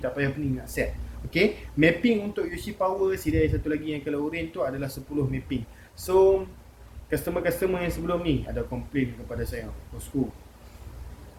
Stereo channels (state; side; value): identical; both; correlation 1.00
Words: tak payah pening nak set. Okay, mapping untuk UC power CDI satu lagi yang color orange tu adalah 10 mapping. So customer-customer yang sebelum ni ada komplain kepada saya, bosku,